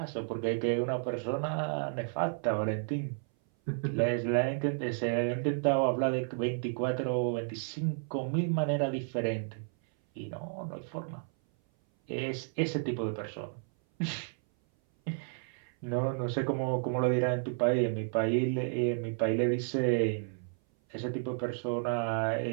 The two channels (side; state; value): left; silent; 56 dB below the other